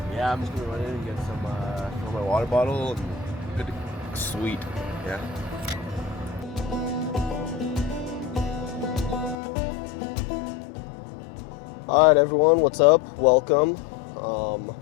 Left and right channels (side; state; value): right; drops out; at 9.3 s